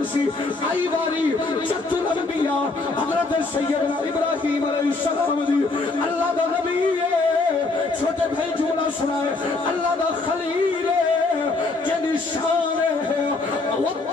سی آئی باری جت الانبیاء حضرت سیدنا ابراہیم علیہ السلام دی اللہ دا نبی ہے چھوٹے بھائی جملہ سنائے اللہ دا خلیل ہے جنی شان ہے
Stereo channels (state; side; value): quieter; right; 3.6 dB